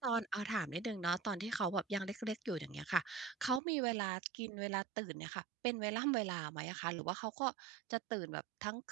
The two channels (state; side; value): drops out; left; at 3.6 s